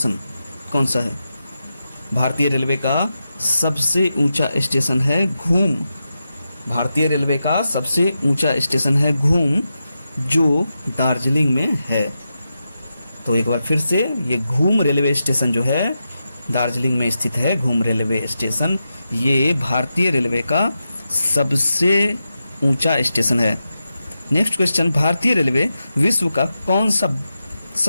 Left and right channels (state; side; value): inverted; both; correlation -0.89